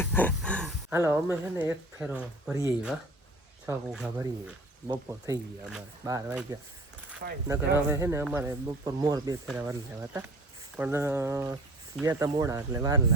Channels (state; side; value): normal; both; correlation 0.45